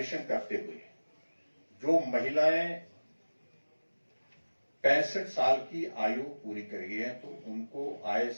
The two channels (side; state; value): both; inverted; correlation -1.00